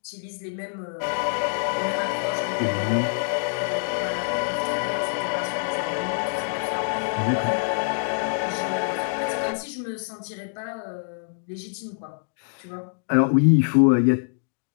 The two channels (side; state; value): right; silent; digital silence